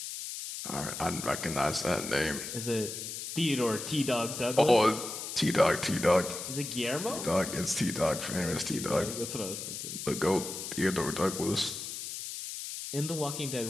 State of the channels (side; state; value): left; noise; hiss, 7 dB below the sound